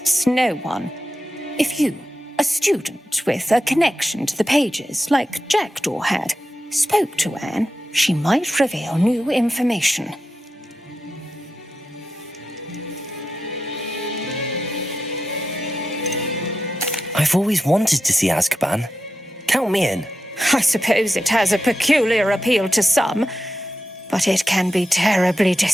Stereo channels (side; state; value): both; normal; correlation 0.89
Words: no one. If you, a student with a connection to the pages, like Jackdaw had, spoke to Anne, she might reveal new information. I've always wanted to see Azkaban. Count me in. I suppose it has a peculiar appeal to some, but it can be terribly